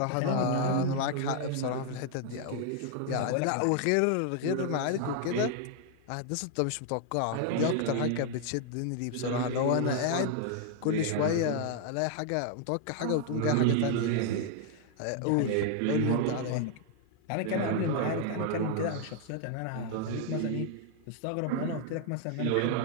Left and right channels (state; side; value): different; both; correlation 0.00